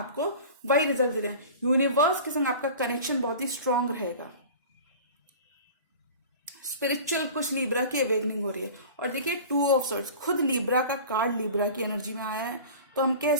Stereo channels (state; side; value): inverted; both; correlation -0.39